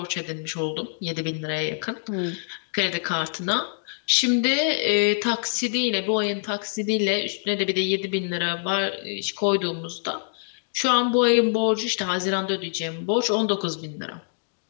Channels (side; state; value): right; silent; digital silence